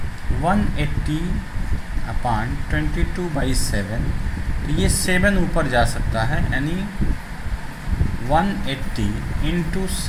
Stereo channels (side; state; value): both; identical; correlation 1.00